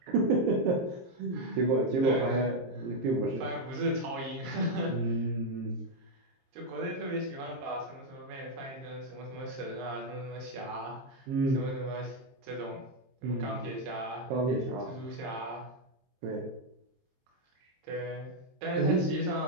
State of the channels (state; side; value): late; left; 23 ms